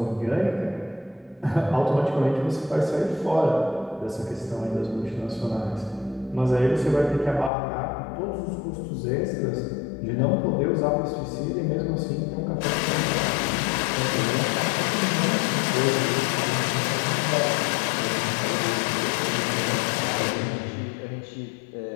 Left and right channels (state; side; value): drops out; right; at 7.5 s